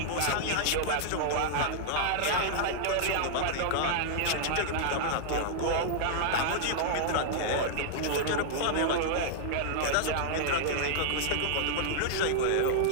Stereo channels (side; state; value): both; different; correlation -0.01